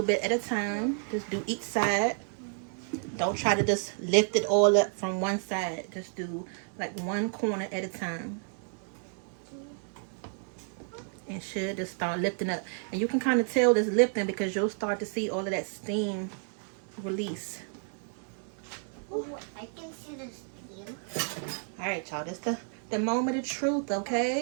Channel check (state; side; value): silent; left; 57 dB below the other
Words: bit at a time. Just do each side. Don't try to just lift it all up from one side. Just do like one corner at a time. And should just start lifting up. And you can kind of tell this lifting because you'll start to see all of that steam release. Ooh, I can see the steam. All right, y'all. This the moment of truth,